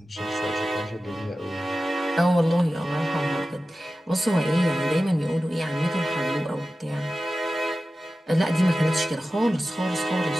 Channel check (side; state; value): both; normal; correlation 0.94